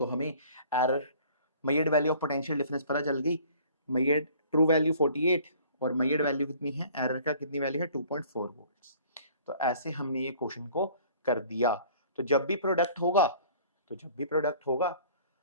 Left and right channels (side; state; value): both; inverted; correlation -0.52